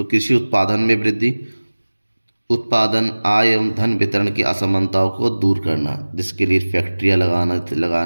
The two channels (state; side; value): inverted; both; correlation -1.00